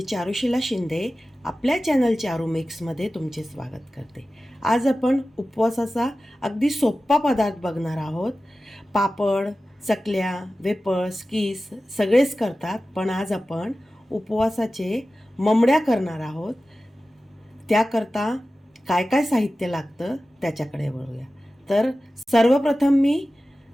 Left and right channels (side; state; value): both; normal; correlation 0.95